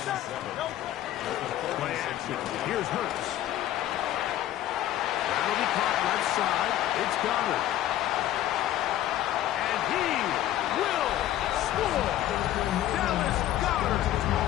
Play action. Here's Hurts. That'll be caught left side. It's Goddard. And he will score. Dallas Goddard.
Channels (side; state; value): right; quieter; 13.1 dB